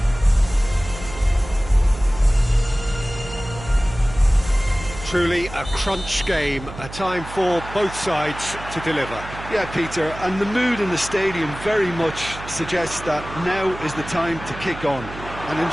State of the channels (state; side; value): noise; right; hum, 13 dB below the sound